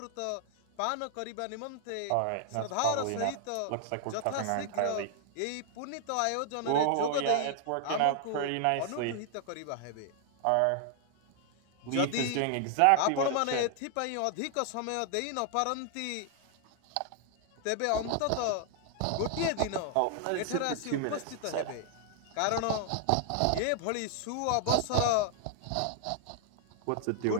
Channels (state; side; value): different; both; correlation 0.00